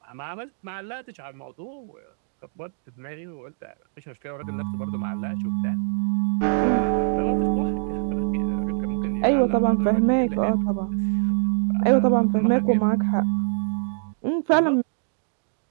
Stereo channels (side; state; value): left; silent; digital silence